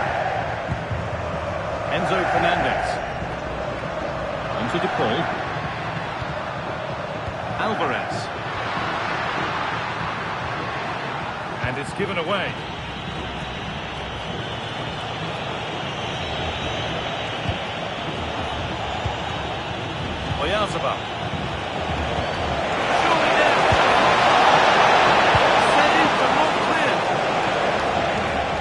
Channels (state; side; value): identical; both; correlation 1.00